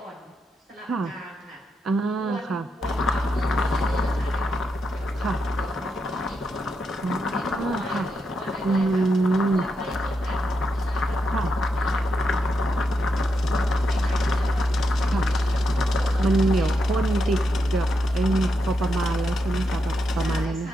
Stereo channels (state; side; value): normal; both; correlation 0.84